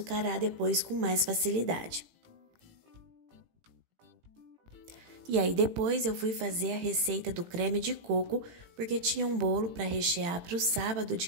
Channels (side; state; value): left; late; 18 ms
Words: depois com mais facilidade. E aí depois eu fui fazer a receita do creme de coco, porque tinha um bolo para rechear para o sábado